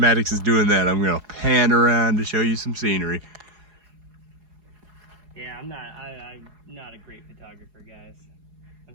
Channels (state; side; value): late; left; 4.8 ms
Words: is doing that, I'm going to pan around to show you some scenery. Yeah, I'm not a great photographer, guys. I'm